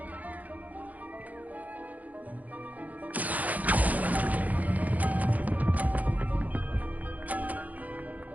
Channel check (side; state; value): left; late; 0.077 ms